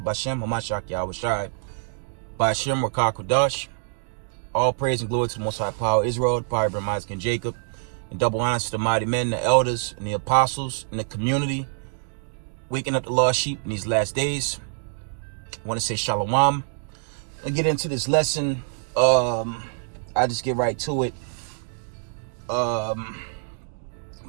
Bashem, Hamashak, Yahushai, Bashem, Rakah, Kudash. All praise and glory to the Most High Power of Israel, the power of Abraham, Isaac, and Jacob. And double honor to the mighty men, the elders, and the apostles, and the community, waking up the lost sheep in these last days. I want to say Shalom. I get into this lesson. I just get right to it. Of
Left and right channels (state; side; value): silent; left; digital silence